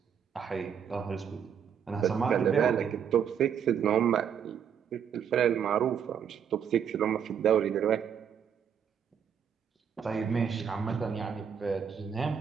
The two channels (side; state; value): left; quieter; 7.8 dB